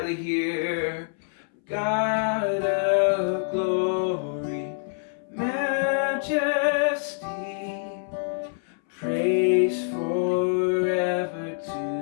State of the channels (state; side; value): silent; right; 61 dB below the other